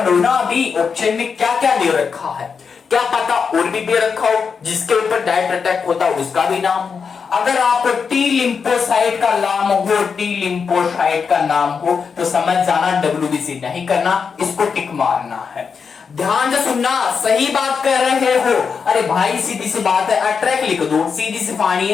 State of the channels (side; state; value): right; quieter; 5.9 dB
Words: ना, अभी ऑप्शन में क्या क्या दे रखा है, क्या पता और भी दे रखा हो जिसके ऊपर डायरेक्ट अटैक होता है उसका भी नाम हो। अगर आपको टी लिम्फोसाइट का नाम हो, टी लिम्फोसाइट का नाम हो तो समझ जाना WBC नहीं करना, इसको टिक मारना है। ध्यान से सुनना, सही बात कर रहे हो। अरे भाई सीधी सी बात है, अट्रैक लिख दो, सीधी सी कहानी